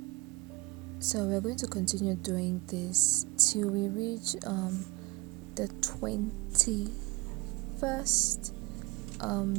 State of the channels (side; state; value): left; quieter; 24.1 dB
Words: So we're going to continue doing this till we reach the 21st